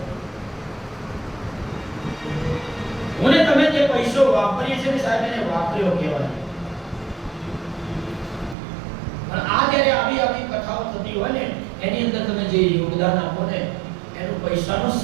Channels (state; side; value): drops out; left; at 8.6 s